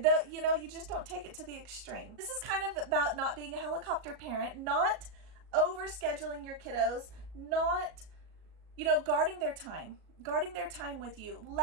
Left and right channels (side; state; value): left; late; 37 ms